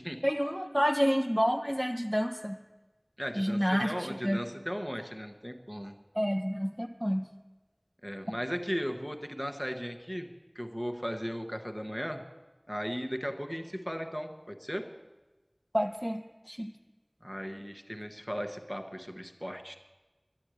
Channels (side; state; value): both; identical; correlation 1.00